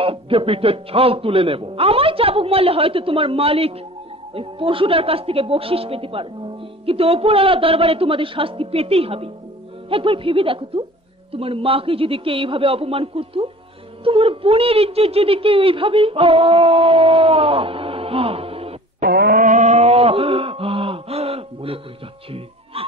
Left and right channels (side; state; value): both; normal; correlation 0.44